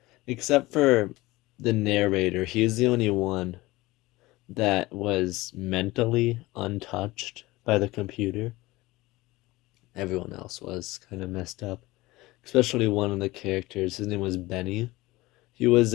Except for the narrator, he's the only one that was mentally untouched by the computer. Everyone else was kind of messed up. Especially one of the characters. His name was Benny. He was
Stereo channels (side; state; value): right; quieter; 19.9 dB